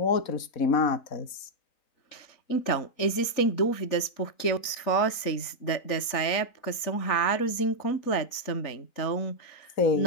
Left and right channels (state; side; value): late; right; 3.9 ms